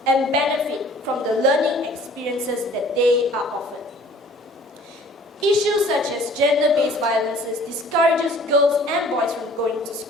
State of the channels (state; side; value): normal; both; correlation 0.51